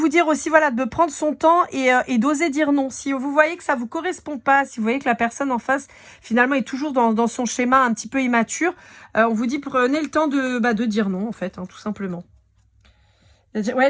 dire aussi, voilà, de prendre son temps et d'oser dire non. Si vous voyez que ça vous correspond pas, si vous voyez que la personne en face, finalement, est toujours dans son schéma un petit peu immature, on vous dit, prenez le temps de dire non, en fait, hein, tout simplement. Ouais,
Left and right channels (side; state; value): both; identical; correlation 1.00